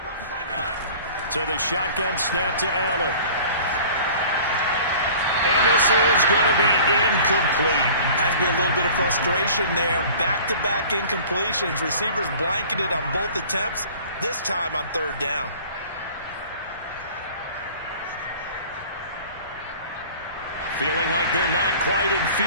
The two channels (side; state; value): both; inverted; correlation -0.45